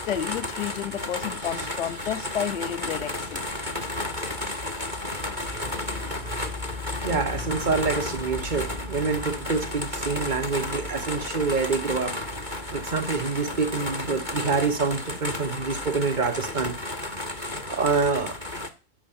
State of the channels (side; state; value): left; late; 2.2 ms